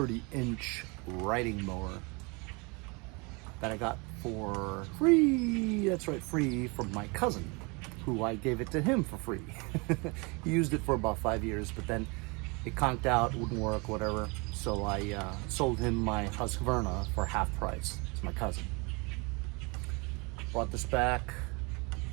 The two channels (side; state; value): left; quieter; 29.3 dB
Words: riding mower that I got for free. That's right, free from my cousin, who I gave it to him for free. He used it for about 5 years, but then it conked out, wouldn't work, whatever. So I sold him my Husqvarna for half price. It's my cousin. Brought this back,